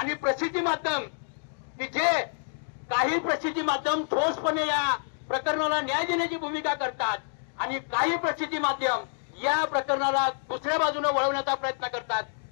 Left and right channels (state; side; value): silent; right; 59 dB below the other